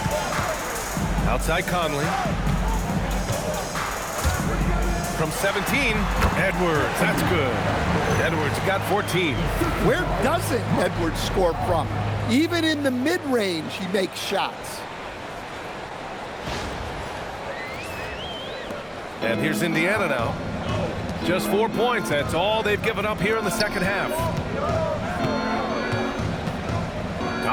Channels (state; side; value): identical; both; correlation 1.00